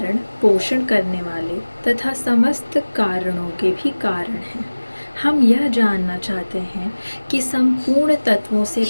पोषण करने वाले तथा समस्त कारणों के भी कारण हैं। हम यह जानना चाहते हैं कि संपूर्ण तत्वों से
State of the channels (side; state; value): both; inverted; correlation -1.00